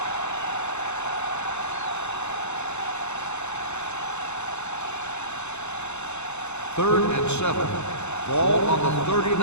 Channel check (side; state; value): right; late; 0.82 ms